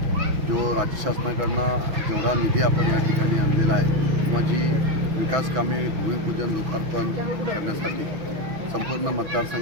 जो राज्य शासनाकडून जेवढा निधी आपण या ठिकाणी आणलेला आहे किंवा जी विकास कामे भूमिपूजन लोकार्पण करण्यासाठी संपूर्ण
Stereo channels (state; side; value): late; left; 6.1 ms